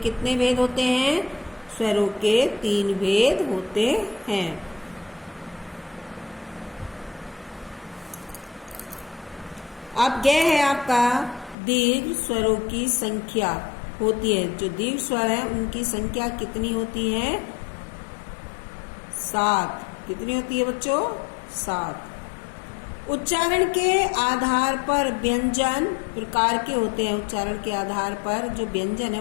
भेद होते हैं? स्वरों के 3 भेद होते हैं। अब ग है आपका दीर्घ स्वरों की संख्या होती है। जो दीर्घ स्वर है उनकी संख्या कितनी होती है? 7। कितनी होती है बच्चों? 7। उच्चारण के आधार पर व्यंजन प्रकार के होते हैं। उच्चारण के आधार पर जो व्यंजन है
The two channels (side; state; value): right; drops out; at 11.6 s